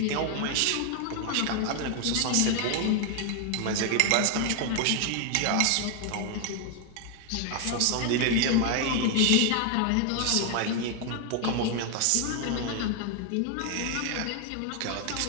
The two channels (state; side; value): different; both; correlation 0.01